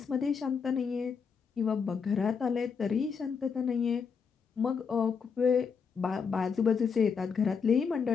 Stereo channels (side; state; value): right; quieter; 6.0 dB